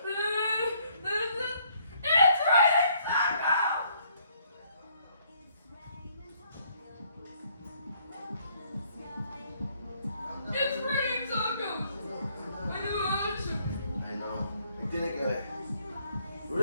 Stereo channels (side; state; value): both; inverted; correlation -0.66